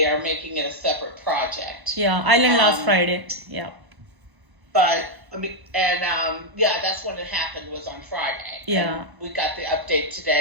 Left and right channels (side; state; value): left; late; 1.1 ms